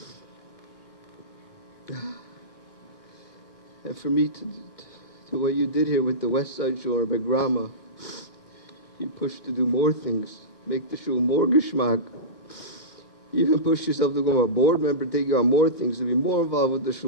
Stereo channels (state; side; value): late; right; 1.5 ms